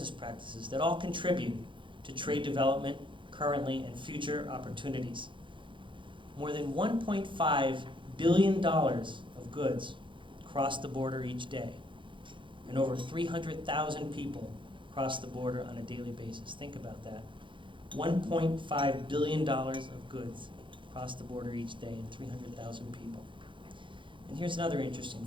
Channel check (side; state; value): left; late; 0.24 ms